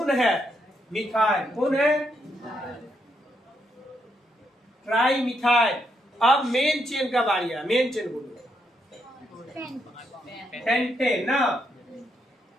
है, मिथाइल। कौन है, ट्राई मिथाइल। अब मेन चेन का बारी है, मेन चेन बोलो, पेंटेन ना।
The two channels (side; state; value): both; normal; correlation 0.78